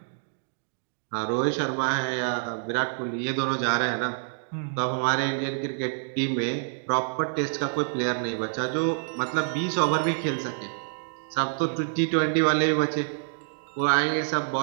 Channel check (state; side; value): silent; left; digital silence